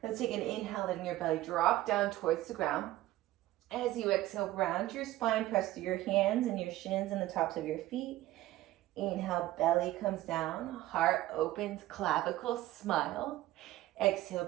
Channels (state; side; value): quieter; left; 15.8 dB